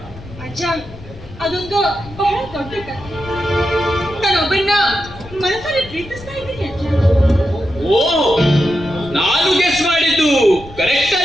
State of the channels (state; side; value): noise; left; rumble, 17 dB below the sound